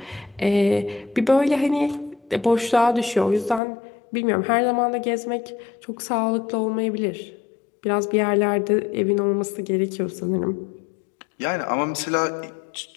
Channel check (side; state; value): right; drops out; at 3.6 s